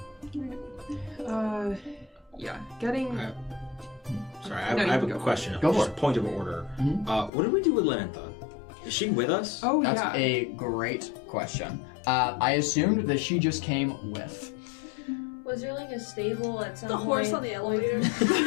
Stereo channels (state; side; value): drops out; right; at 7.3 s